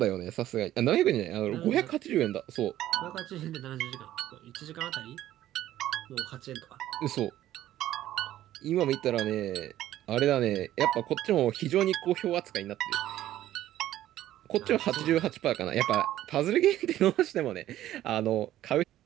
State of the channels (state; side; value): quieter; left; 13.3 dB